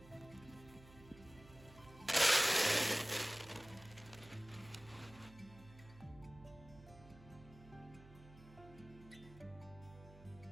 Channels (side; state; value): right; noise; hum, 20 dB below the sound